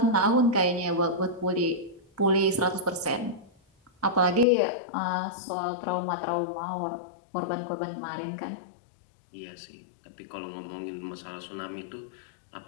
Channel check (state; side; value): drops out; right; at 4.5 s